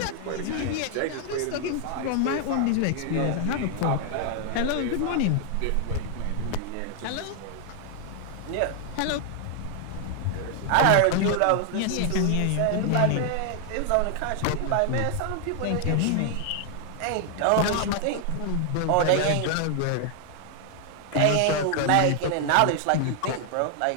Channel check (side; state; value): both; different; correlation 0.00